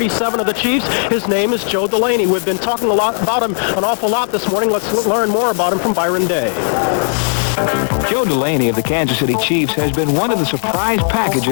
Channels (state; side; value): silent; right; digital silence